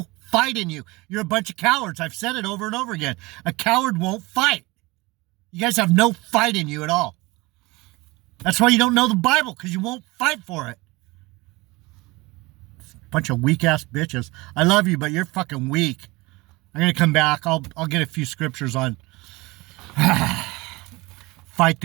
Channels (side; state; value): left; quieter; 22.9 dB